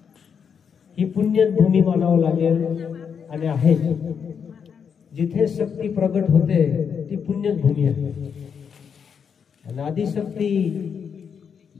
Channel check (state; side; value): quieter; right; 6.9 dB